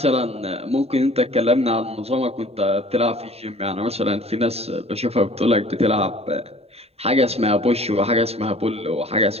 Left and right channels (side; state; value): left; late; 0.30 ms